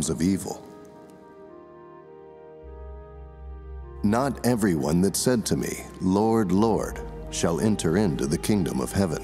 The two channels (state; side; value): identical; both; correlation 1.00